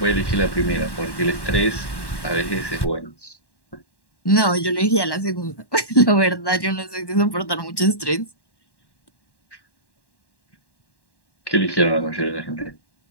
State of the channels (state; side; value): late; right; 1.1 ms